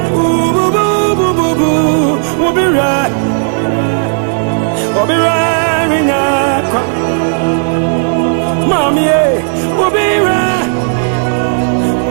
we'll be right. We'll be wearing a Mommy, we'll be right.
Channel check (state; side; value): silent; left; digital silence